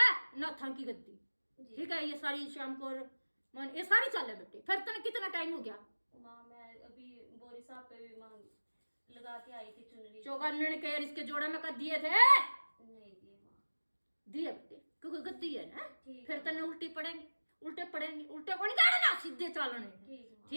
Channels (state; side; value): inverted; both; correlation -1.00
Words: नाथा की गद्दी। जी। ठीक है, ये सारी शाम को मन ये सारी चाल है बेटे। फिर तने कितना टाइम हो गया? माँ मैं अभी बोरी साहब पे भी माँ लगा के आई थी चुनरी। चौकानन के इसके जोड़ा में का दिए थे? नहीं दिए माँ। दिए बेटे, क्योंकि गद्दी है ना। ठीक फिर है। तने उल्टी पड़ेंगे, उल्टे पड़ेंगे, उल्टे को नहीं जाना ना, सीधे चालने। ठीक है माँ।